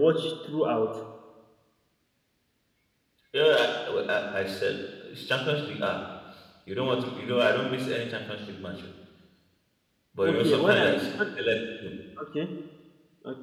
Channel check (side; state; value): both; identical; correlation 1.00